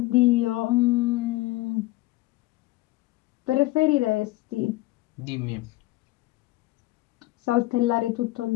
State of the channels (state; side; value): quieter; right; 18.8 dB